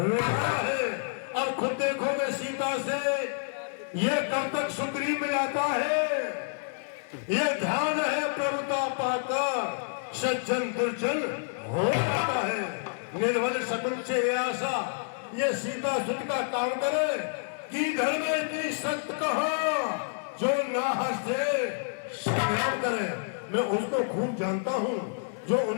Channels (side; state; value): right; silent; 59 dB below the other